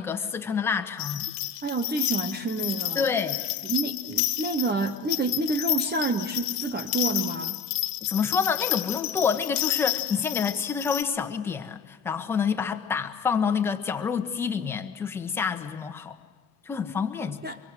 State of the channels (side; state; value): right; quieter; 4.6 dB